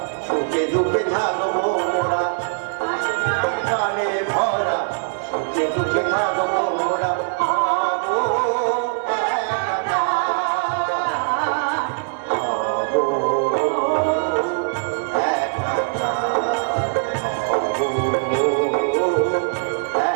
সুখে দুঃখে থাকবো মোরা, গানে ভরা সুখে দুঃখে থাকবো মোরা। হবো একাকার, হবো একাকার, হবো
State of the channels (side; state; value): left; silent; digital silence